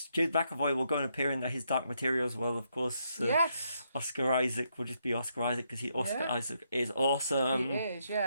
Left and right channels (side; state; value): both; inverted; correlation -0.77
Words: will go and appear in his Dark Materials. Well, of course. Yes. Oscar Isaac will just be Oscar Isaac because Isaac is awesome. He is,